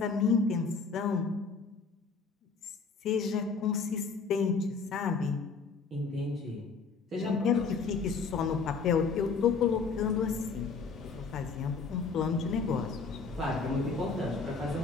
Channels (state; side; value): quieter; right; 4.8 dB